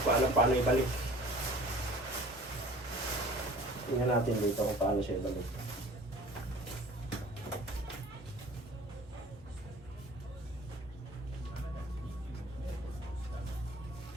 pa alam paano ibalik. Tingnan natin dito kung paano siya balik.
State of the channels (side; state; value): both; normal; correlation 0.47